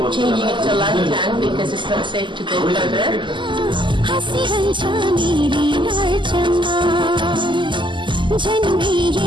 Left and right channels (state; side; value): late; left; 0.24 ms